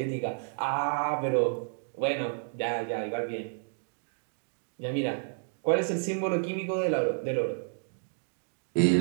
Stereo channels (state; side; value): silent; left; digital silence